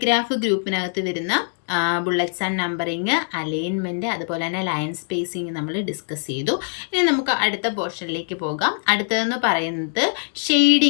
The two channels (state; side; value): silent; right; 57 dB below the other